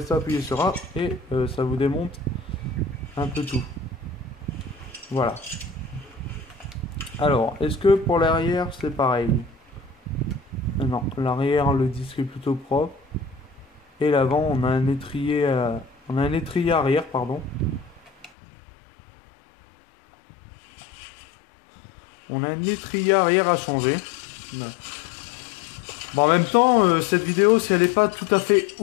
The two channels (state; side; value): drops out; right; at 18.3 s